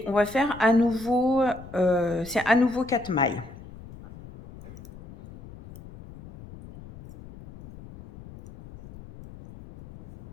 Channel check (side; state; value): left; noise; rumble, 18 dB below the sound